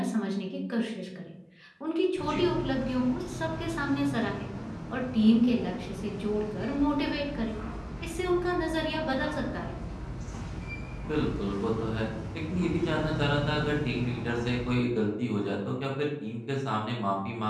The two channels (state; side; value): identical; both; correlation 1.00